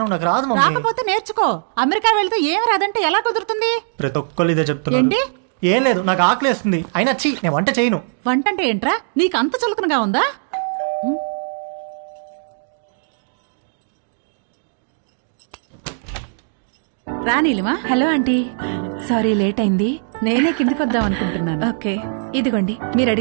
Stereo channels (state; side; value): silent; left; digital silence